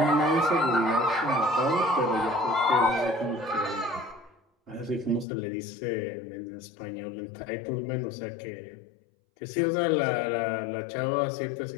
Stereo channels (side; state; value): right; drops out; at 5.2 s